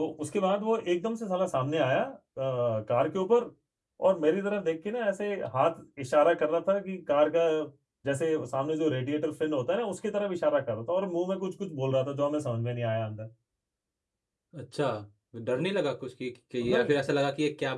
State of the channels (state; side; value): identical; both; correlation 1.00